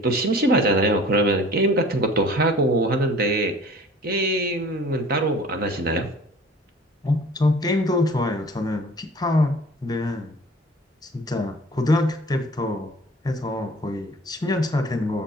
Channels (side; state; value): both; normal; correlation 0.47